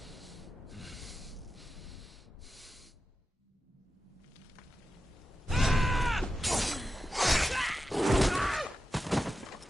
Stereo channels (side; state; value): both; normal; correlation 0.90